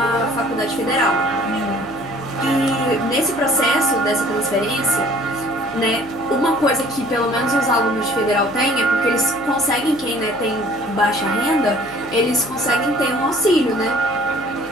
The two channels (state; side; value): noise; left; hum, 23 dB below the sound